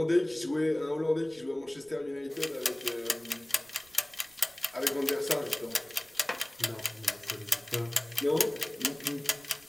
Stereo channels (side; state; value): right; noise; rumble, 28 dB below the sound